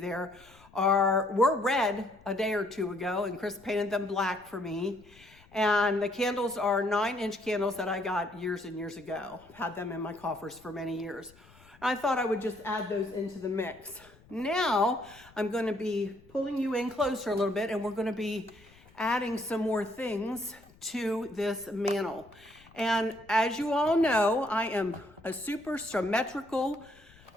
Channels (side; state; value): left; noise; rumble, 26 dB below the sound